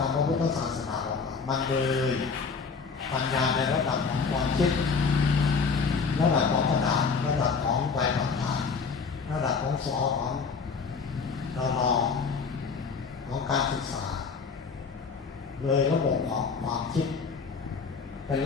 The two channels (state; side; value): quieter; right; 5.2 dB